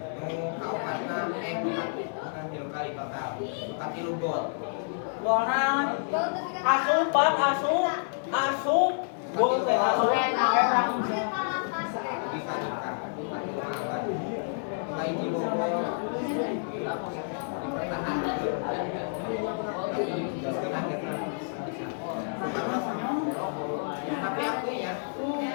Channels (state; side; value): silent; right; digital silence